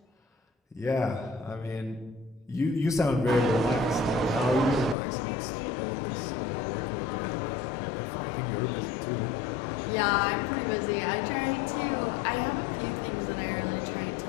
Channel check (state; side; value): drops out; right; at 5.0 s